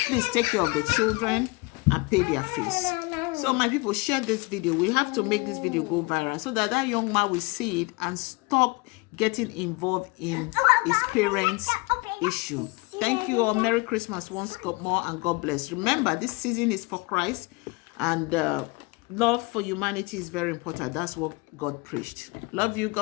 Please take care of the children and pay their fees. So my people, share this video. We have to make this video go viral so that that young man will see it and stop getting involved in his parents' issue. Thank you all. Merry Christmas once more, and God bless. Remember, this season is for Christ, and love for humanity is very important. That's what God preached. Love you.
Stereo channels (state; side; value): quieter; right; 26.4 dB